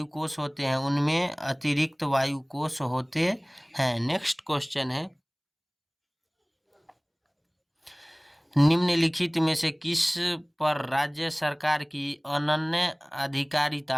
होते हैं। नेक्स्ट क्वेश्चन है, निम्नलिखित में से किस पर राज्य सरकार की अनन्य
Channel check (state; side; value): identical; both; correlation 1.00